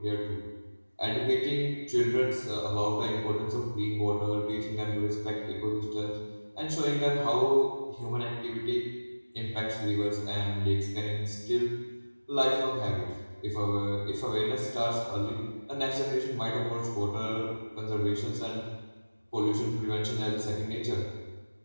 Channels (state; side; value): inverted; both; correlation -1.00